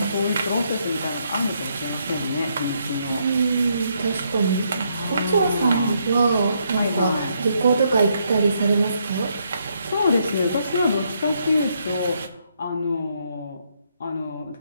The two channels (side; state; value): both; inverted; correlation -0.75